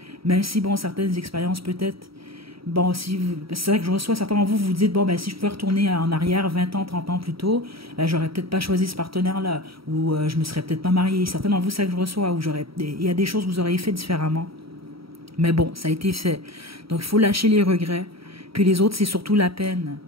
même si, bon, certaines expériences peut-être, bon, si c'est ça que je reçois, certains d'entre vous, vous dites, bon, ben, si je pouvais retourner en arrière 20 ans, 30 ans plus tôt, ben, j'aurais peut-être pas choisi ce partenaire-là, ou je me serais peut-être pas mariée. Certains d'entre vous, c'est ça que je reçois, ou il y a des choses que vous auriez fait différemment. Mais bon, ça a été fait. Donc, il faut lâcher les regrets. Puis les autres, c'est surtout la peine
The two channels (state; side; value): late; left; 0.75 ms